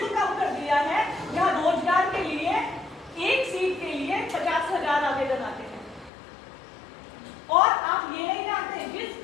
कम कर दिया है जहां रोजगार के लिए एक सीट के लिए 50,000 आवेदन आते हैं। और आप ये नहीं जानते जिस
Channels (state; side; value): drops out; right; at 6.1 s